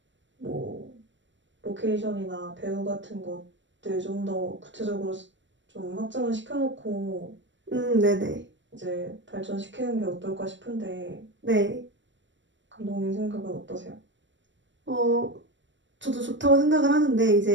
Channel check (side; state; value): left; late; 0.54 ms